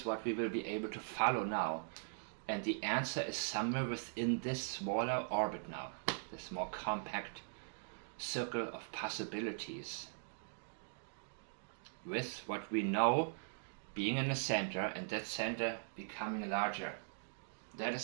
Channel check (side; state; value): left; silent; digital silence